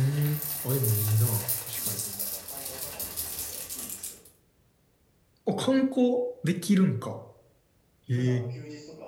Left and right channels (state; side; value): identical; both; correlation 1.00